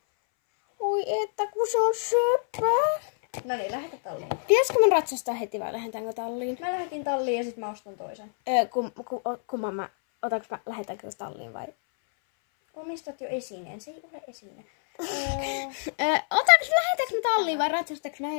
Oi että, kun se on söpö. No niin, lähetä talliin. Pitäisikö mun ratsastaa heti vai lähdetäänkö talliin? Mä lähetin talliin ja sit mä ostan toisen. Kumman mä, lähdetäänkö talliin vai? Omistat jo esineen, se ei ole esine. Lähdetäänkö me talliin vai ratsastaanko me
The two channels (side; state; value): right; silent; 60 dB below the other